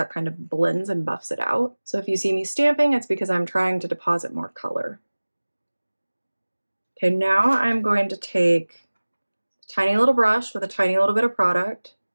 kind of blends and buffs it out. So if you see me stamping, it's because I'm trying to deposit more color. Okay, now I'm going to take a tiny little brush with a tiny little bit of product,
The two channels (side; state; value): both; inverted; correlation -1.00